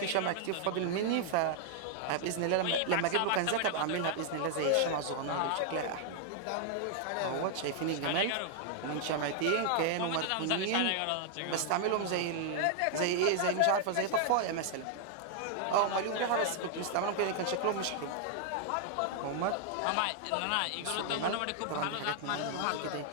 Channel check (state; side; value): different; both; correlation 0.00